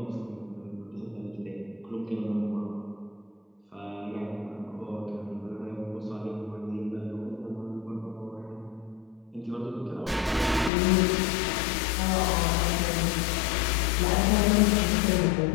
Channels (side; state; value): right; drops out; at 10.7 s